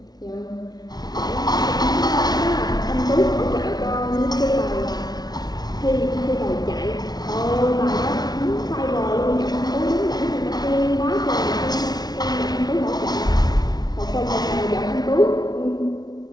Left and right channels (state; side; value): late; right; 0.19 ms